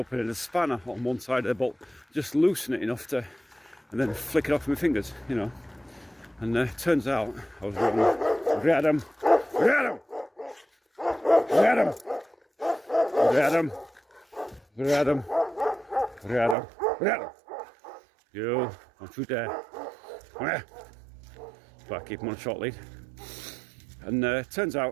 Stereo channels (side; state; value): left; drops out; at 16.6 s